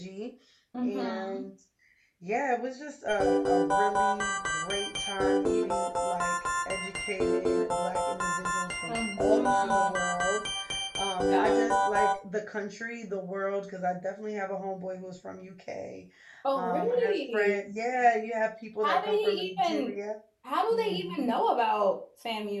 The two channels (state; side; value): identical; both; correlation 1.00